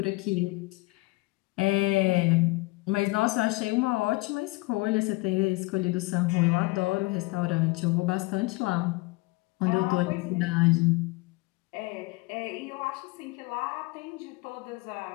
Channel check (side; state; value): right; quieter; 23.4 dB